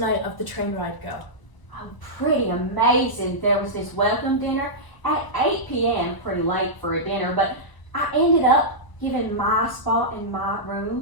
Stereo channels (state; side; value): late; right; 1.0 ms